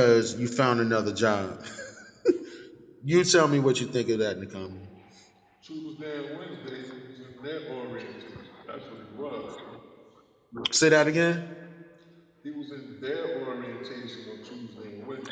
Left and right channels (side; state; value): both; identical; correlation 1.00